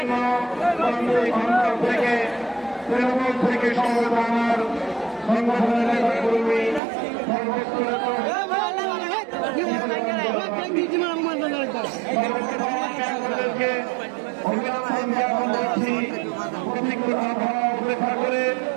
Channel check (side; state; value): left; drops out; at 6.8 s